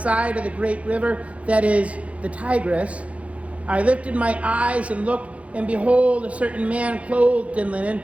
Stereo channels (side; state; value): left; late; 0.064 ms